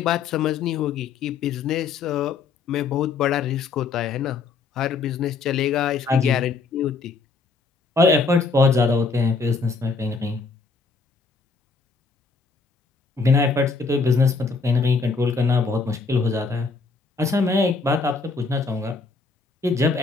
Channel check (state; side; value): quieter; right; 4.4 dB